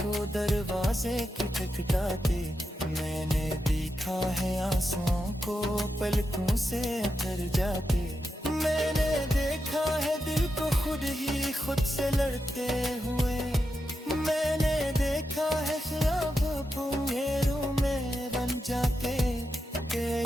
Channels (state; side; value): normal; both; correlation 0.87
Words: को दरवाजे खटखटाते, मैंने देखा है आंसुओं को पलकों से उतर जाते, मैंने देखा है दिल को खुद ही खुद से लड़ते हुए, मैंने देखा है ख्वाब अंधेरों में बन जाते।